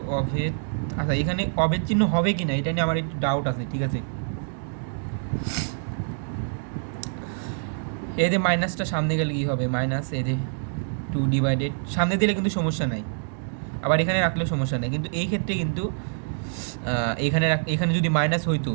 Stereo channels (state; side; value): silent; left; digital silence